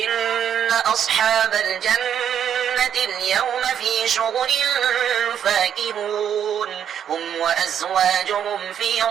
أصحاب الجنة اليوم في شغل فاكهون هم وأزواجهم في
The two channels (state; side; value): quieter; left; 9.1 dB